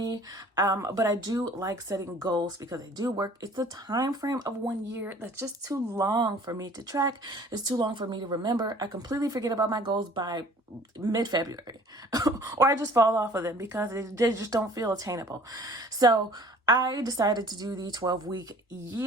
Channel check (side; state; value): both; normal; correlation 0.51